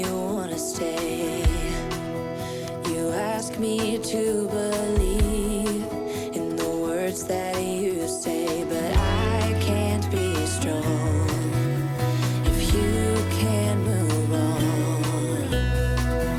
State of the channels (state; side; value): identical; both; correlation 1.00